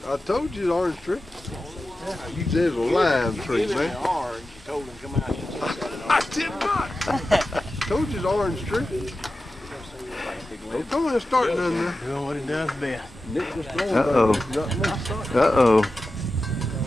I told you the orange tree. You said it was a lime tree, man. I did not. Told you the orange tree. Don't come in and start none there. Doing what he does best. Uh-oh. Uh-oh.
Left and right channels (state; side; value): normal; both; correlation 0.93